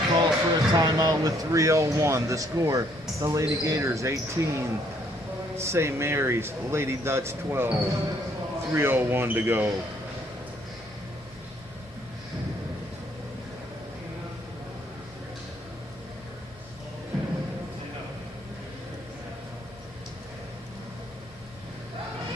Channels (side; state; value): both; normal; correlation 0.66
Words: calls for a timeout with 3:01. The score, the Lady Gators 18, St. Mary's, Lady Dutch 12. 3:01 to go.